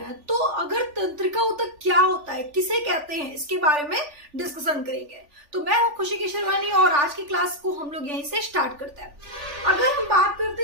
हैं, तो अगर तंत्रिका ऊतक क्या होता है, किसे कहते हैं, इसके बारे में डिस्कशन करेंगे। तो मैं हूं खुशी केशरवानी और आज की क्लास को हम लोग यहीं से स्टार्ट करते हैं। अगर हम बात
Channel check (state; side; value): late; left; 3.4 ms